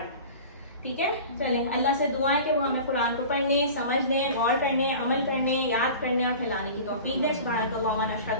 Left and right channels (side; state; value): both; inverted; correlation -0.38